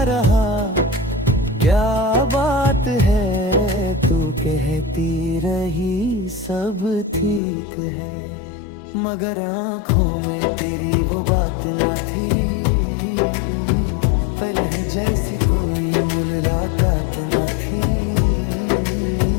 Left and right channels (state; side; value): drops out; right; at 7.4 s